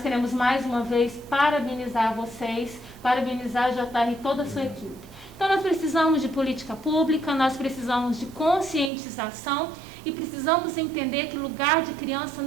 mais uma vez parabenizar vocês, parabenizar a JR e toda a sua equipe. Então nós precisamos de política pública, nós precisamos de conscientização e precisamos entender que lugar de criança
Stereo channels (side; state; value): left; drops out; at 8.9 s